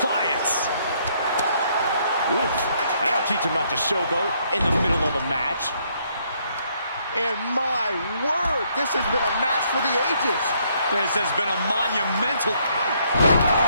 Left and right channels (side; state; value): both; inverted; correlation -0.70